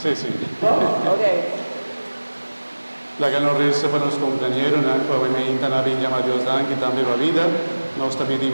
sí. Ok. La que nos resta para los compañeros, obviamente, la llama Dios dan que también va vida. Nos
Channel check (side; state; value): both; inverted; correlation -1.00